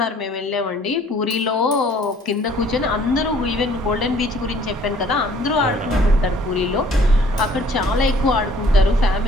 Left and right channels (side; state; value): both; normal; correlation 0.57